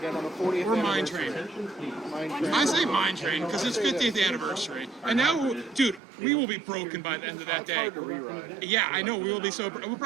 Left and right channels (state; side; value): drops out; left; at 6.0 s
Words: on the 40th Or Mine anniversary? Train. Mine Train. I say Mine Train because it's 50th anniversary. And now, dude, we will be broken by the end of that It's day. hard to reride. Yeah, I know. We will be so. If